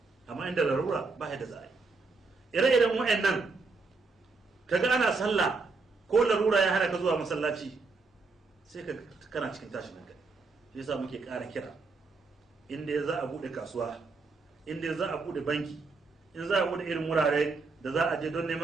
Amma inda larura ba da za a yi. Ire-iren wa'annan kaga ana sallah ko larura ya hana ka zuwa masallaci, sai ka kana cikin tashin hankali. Shi yasa muke ƙara kira, inda za a buɗe kasuwa, inda za a buɗe banki, in za a buɗe irin wurare da za a je don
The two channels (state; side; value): quieter; left; 4.1 dB